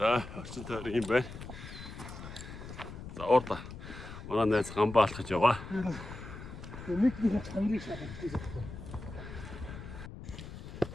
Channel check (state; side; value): noise; left; rumble, 11 dB below the sound